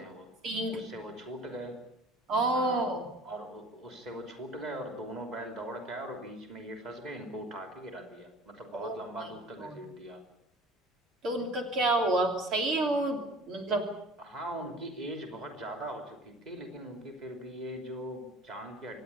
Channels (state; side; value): normal; both; correlation 0.45